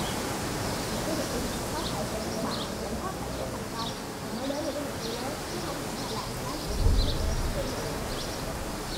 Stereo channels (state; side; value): identical; both; correlation 1.00